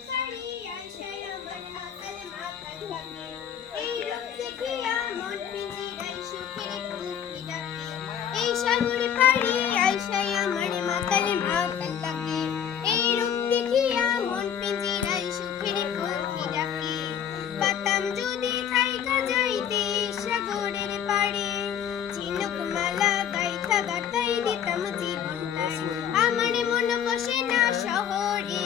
পাড়ি আসায় আমার মাতাল মাতাল লাগে, এই রূপ দেখিয়া মন পিঞ্জিরায় সুখের কুকি ডাকে। এই সাগর পাড়ি আসায় আমার মাতাল মাতাল লাগে, এই রূপ দেখিয়া মন পিঞ্জিরায় সুখের কুকি ডাকে। পাতাম যদি থাইকা যাইতে সাগরের পাড়ে, ঝিনুক মালা গাইথা গাতাই দিতাম জীবনটায়। আমার মন বসে না শহরে,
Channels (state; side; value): quieter; right; 9.0 dB